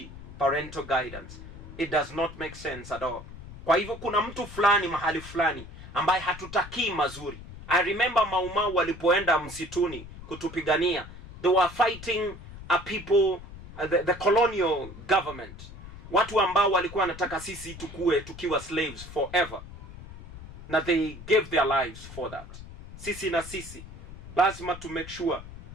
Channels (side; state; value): left; noise; rumble, 15 dB below the sound